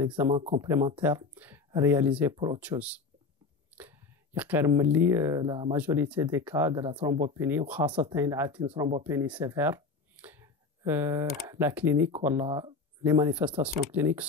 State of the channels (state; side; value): quieter; right; 4.4 dB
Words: complémentaire réalisé pour autre chose. La majorité des cas de la thrombopénie, une thrombopénie sévère, la clinique ou les manifestations cliniques